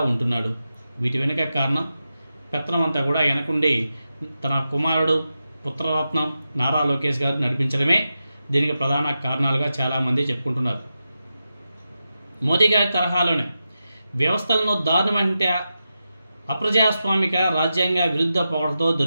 ఉంటున్నాడు? వీటి వెనుక కారణం పెత్తనం అంతా కూడా వెనకుండి తన కుమారుడు పుత్రరత్నం నారా లోకేష్ గారు నడిపించడమే దీనికి ప్రధాన కారణాలుగా చాలామంది చెప్పుకుంటున్నారు. మోదీ గారి తరహాలోనే వ్యవస్థలను దారుణమంటే అప్రజాస్వామిక రాజ్యాంగ విరుద్ధ పొగడతో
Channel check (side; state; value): both; inverted; correlation -0.90